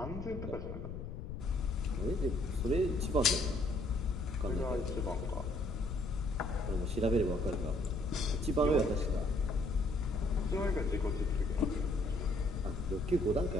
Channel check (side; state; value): left; noise; rumble, 7 dB below the sound